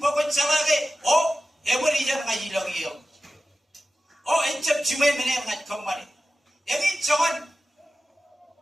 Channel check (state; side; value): normal; both; correlation 0.94